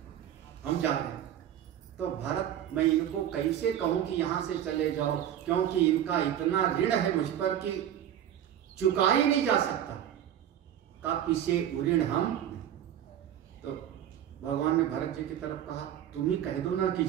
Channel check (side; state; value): left; quieter; 10.7 dB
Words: हम जा रहे हैं। तो भरत, मैं इनको कैसे कहूं कि यहां से चले जाओ, क्योंकि इनका इतना ऋण है मुझ पर कि चुका ही नहीं जा सकता। कापी से ऋण हम। तो भगवान ने भरत जी की तरफ कहा, तुम ही कह दो ना कि